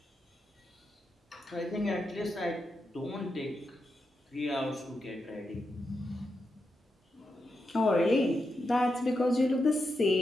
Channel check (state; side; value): normal; both; correlation 0.86